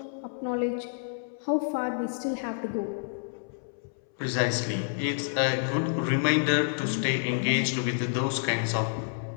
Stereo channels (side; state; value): right; silent; 59 dB below the other